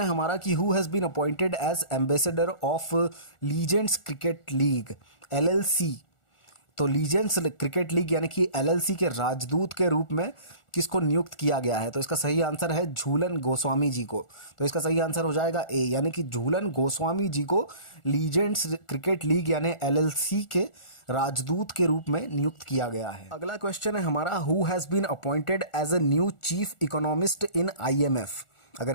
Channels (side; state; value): right; late; 1.4 ms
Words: हमारा कि who has been appointed as ambassador of legends cricket league LLC। तो लीजेंड्स क्रिकेट लीग यानी कि LLC के राजदूत के रूप में किसको नियुक्त किया गया है? तो इसका सही आंसर है झूलन गोस्वामी जी को। तो इसका सही आंसर हो जाएगा ए, यानी कि झूलन गोस्वामी जी को लीजेंड्स क्रिकेट लीग यानी LLC के राजदूत के रूप में नियुक्त किया गया है। अगला क्वेश्चन है हमारा who has been appointed as a new chief economist in IMF। अगर